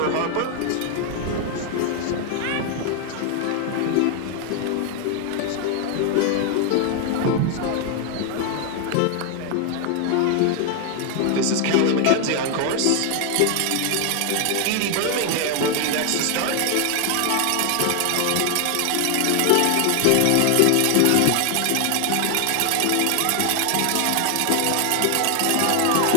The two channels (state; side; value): different; both; correlation 0.00